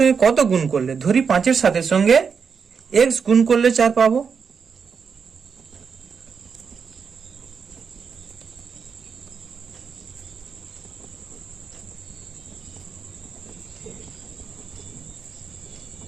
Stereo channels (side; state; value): left; quieter; 6.1 dB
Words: কত গুণ করলে, ধরি 5-এর সাথের সঙ্গে x গুণ করলে 4 পাবো।